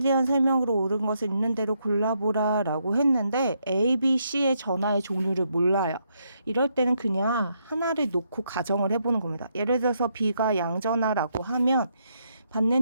설명으로 옳은 것을 있는 대로 골라보라 라고 했는데 A, B, C의 전하의 종류를 몰라요. 이럴 때는 그냥 하나를 놓고 가정을 해보는 겁니다. 예를 들어서 B가 양전하라고 하면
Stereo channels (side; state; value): both; inverted; correlation -0.77